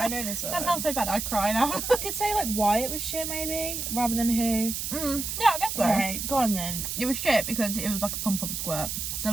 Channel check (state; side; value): noise; right; hiss, 4 dB below the sound